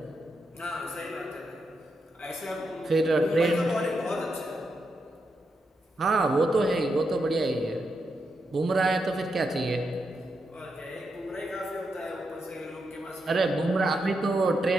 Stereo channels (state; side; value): normal; both; correlation 0.84